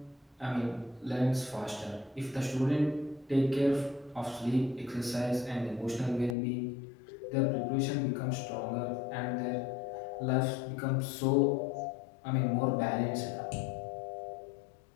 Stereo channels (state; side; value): drops out; right; at 6.4 s